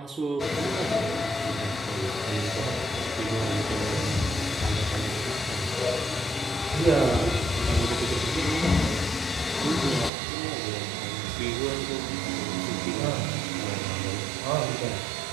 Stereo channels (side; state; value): left; drops out; at 10.1 s